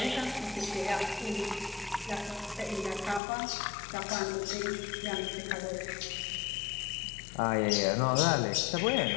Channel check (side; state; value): right; drops out; at 3.2 s